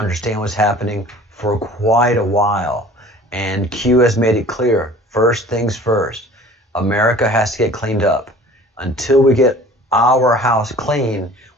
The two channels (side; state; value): both; normal; correlation 0.47